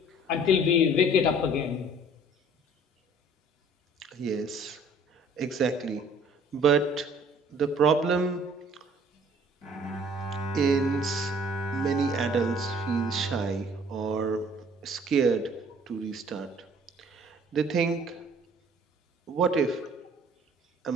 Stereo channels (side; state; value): both; normal; correlation 0.55